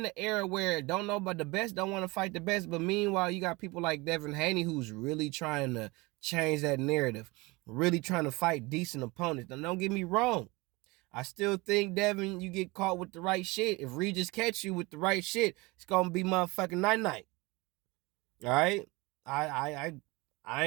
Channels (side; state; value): left; quieter; 24.0 dB